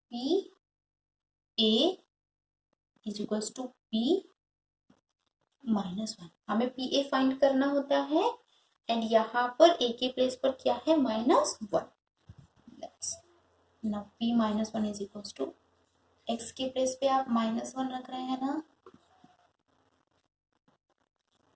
p a is equals to p -1। हमें P A find करना होता है, and यहाँ पर ए के place पर क्या है, -1। Now p -1 is equals to, x के प्लेस पे आप -1 रख रहे हैं ना,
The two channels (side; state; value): both; identical; correlation 1.00